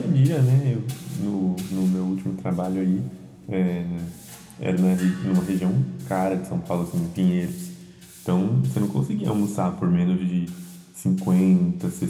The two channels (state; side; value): identical; both; correlation 1.00